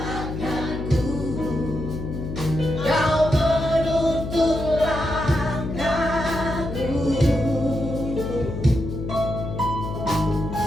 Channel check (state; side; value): noise; left; hum, 6 dB below the sound